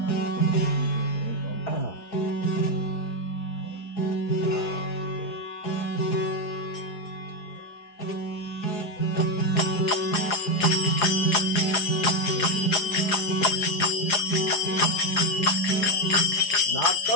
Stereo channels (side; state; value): right; late; 4.8 ms